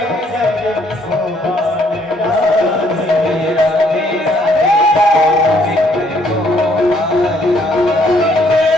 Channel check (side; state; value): both; normal; correlation 0.66